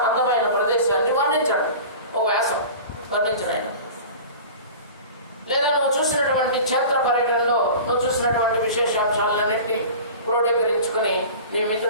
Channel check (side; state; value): both; inverted; correlation -0.37